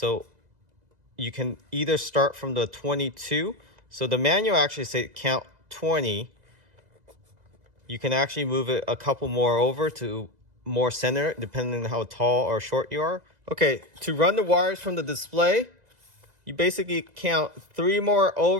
you can either start from the 22. So the manual actually says count 20. You can actually move it a couple more over to more center, depending on how tall or short you are. Okay, to run the wires from the display, you basically count 3 more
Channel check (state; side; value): late; left; 2.0 ms